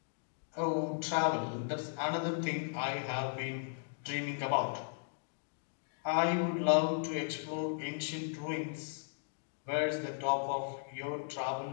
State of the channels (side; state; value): right; silent; digital silence